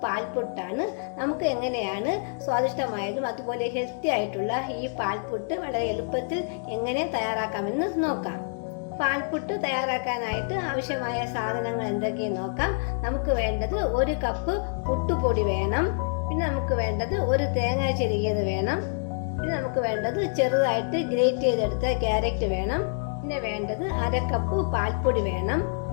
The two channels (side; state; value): right; silent; digital silence